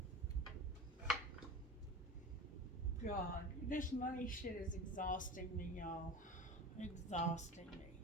God, this money shit is exhausting me, y'all. Exhausting me.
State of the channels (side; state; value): both; normal; correlation 0.32